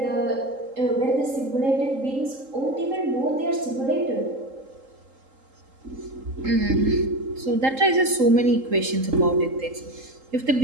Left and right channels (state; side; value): late; left; 3.8 ms